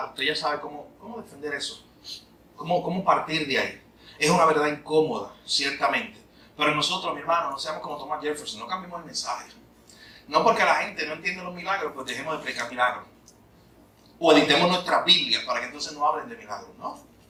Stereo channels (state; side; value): identical; both; correlation 1.00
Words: Usted ya sabe cómo defender eso. Cómo partir de ahí. Es una verdad incómoda, ciertamente. Pero nosotros, mi hermano, no seamos como Thomas Jefferson, no cambiemos el mensaje. No porque la gente no entiende los milagros, pues dejemos de explicar milagros. O editemos nuestras Biblias para que entonces no hablen de milagros, ¿no?